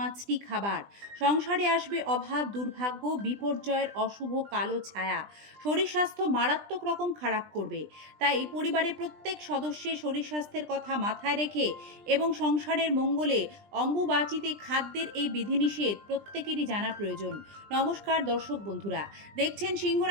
খাবার। সংসারে আসবে অভাব, দুর্ভাগ্য, বিপর্যয়ের অশুভ কালো ছায়া। শরীর স্বাস্থ্য মারাত্মক রকম খারাপ করবে। তাই পরিবারের প্রত্যেক সদস্যের শরীর স্বাস্থ্যের কথা মাথায় রেখে এবং সংসারের মঙ্গলে অম্বুবাচীতে খাদ্যের এই বিধিনিষেধ প্রত্যেকেরই জানা প্রয়োজন। নমস্কার দর্শক বন্ধুরা, দেখছেন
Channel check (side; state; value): left; late; 20 ms